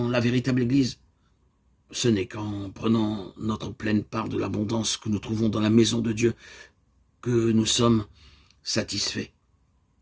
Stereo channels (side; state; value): both; identical; correlation 1.00